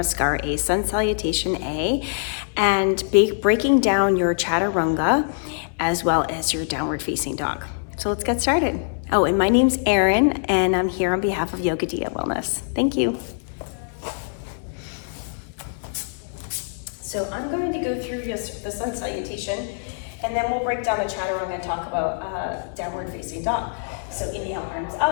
A, Sun Salutation A, and breaking down your Chaturanga as well as your downward facing dog. So let's get started. Oh, and my name's Erin and I'm here on behalf of Yoga Dia Wellness. Thank you. So I'm going to go through the Sun Salutation and then we'll break down the Chaturanga and talk about downward facing dog. So inhale, arms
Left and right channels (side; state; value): right; silent; digital silence